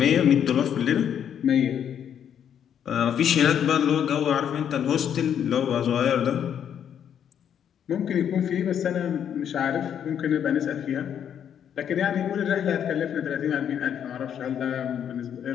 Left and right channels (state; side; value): quieter; right; 8.9 dB